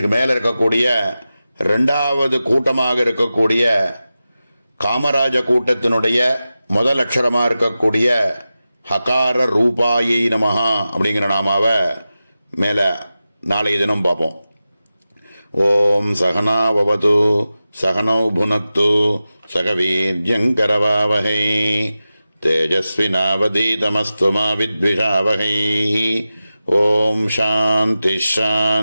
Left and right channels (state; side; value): inverted; both; correlation -0.93